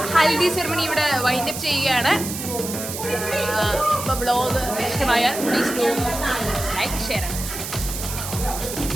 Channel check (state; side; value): noise; right; hiss, 7 dB below the sound